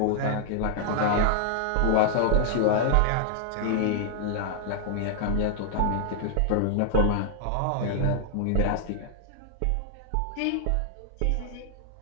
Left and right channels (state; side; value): different; both; correlation 0.00